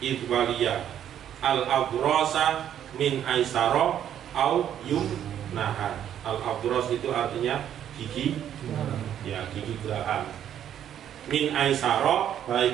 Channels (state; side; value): quieter; left; 10.1 dB